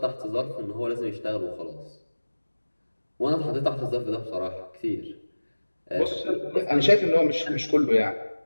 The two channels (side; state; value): both; inverted; correlation -1.00